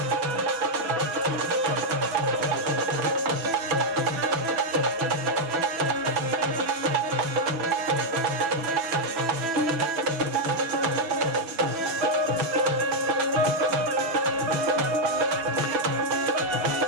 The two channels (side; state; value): left; late; 6.1 ms